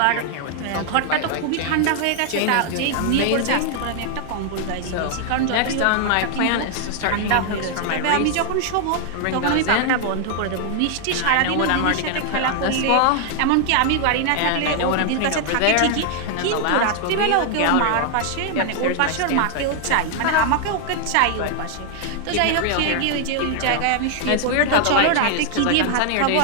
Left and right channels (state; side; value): different; both; correlation 0.00